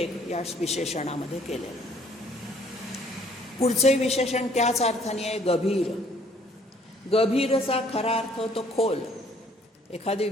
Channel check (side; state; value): both; normal; correlation 0.61